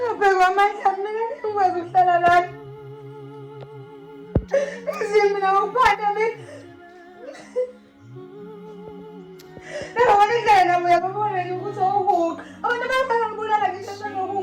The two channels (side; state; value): both; identical; correlation 1.00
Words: amandla ami ngingakwazi ukuhlala lana izimina ngokuphatha mina nabona indlela nabo uyababona nje ukuthi awuhuqa abantu bayafana ngibulala ngisho